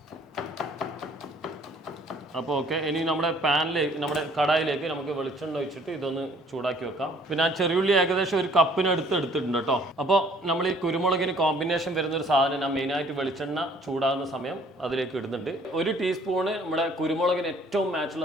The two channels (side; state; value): both; normal; correlation 0.58